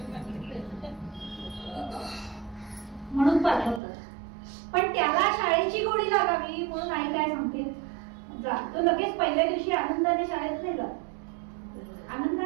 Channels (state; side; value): drops out; left; at 3.8 s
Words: म्हणून पाठवतात. पण त्याला शाळेची गोडी लागावी म्हणून आई काय सांगते, जा. तो लगेच पहिल्या दिवशी आनंदाने शाळेत नाही जात,